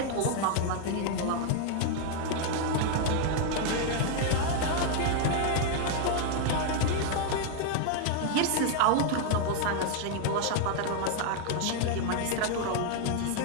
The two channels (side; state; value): both; different; correlation 0.00